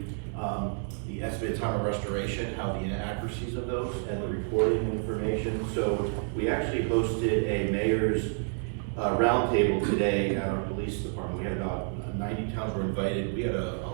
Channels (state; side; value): silent; left; 58 dB below the other